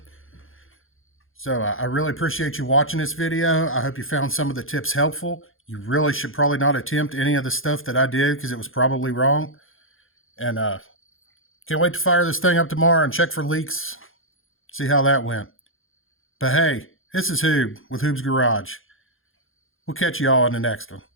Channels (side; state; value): right; late; 0.59 ms